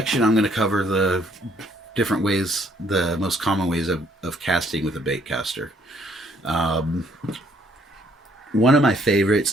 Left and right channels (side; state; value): both; normal; correlation 0.66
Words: I'm going to cover the different ways, the most common ways of casting with a baitcaster. Um, One of my favorites